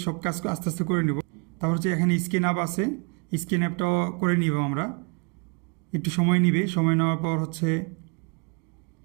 সব কাজ আস্তে আস্তে করে নিব। তারপর হচ্ছে এখানে স্ক্রিন অ্যাপ আছে, স্ক্রিন অ্যাপটাও করে নিব আমরা, একটু সময় নিবে। সময় নেওয়ার পর হচ্ছে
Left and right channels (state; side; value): quieter; left; 34.1 dB